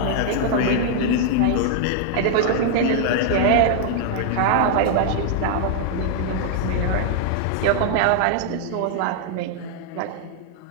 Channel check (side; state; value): both; different; correlation 0.00